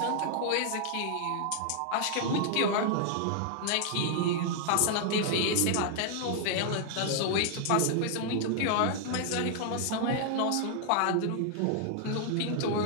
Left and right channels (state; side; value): different; both; correlation 0.00